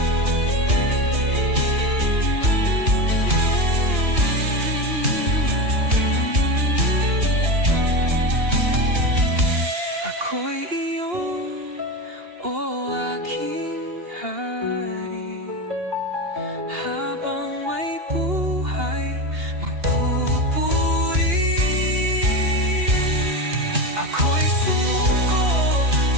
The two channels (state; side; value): late; left; 2.9 ms